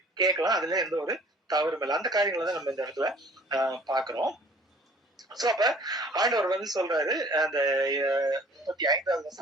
கேட்கலாம். அதுல எந்த ஒரு தவறும் இல்லை. அந்த காரியங்களை தான் நம்ம இந்த இடத்துல பாக்குறோம். சோ அப்ப ஆண்டவர் வந்து சொல்றாரு, அந்த 35வது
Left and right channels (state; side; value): normal; both; correlation 0.52